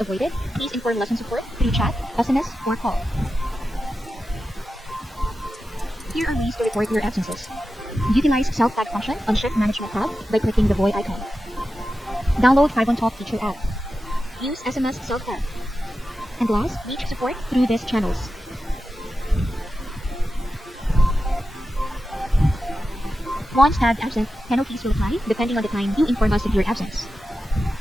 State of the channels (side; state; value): both; normal; correlation 0.92